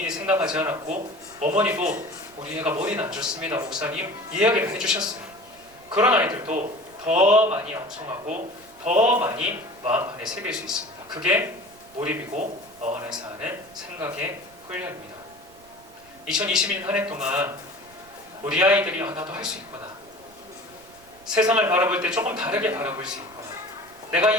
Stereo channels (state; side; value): noise; right; rumble, 27 dB below the sound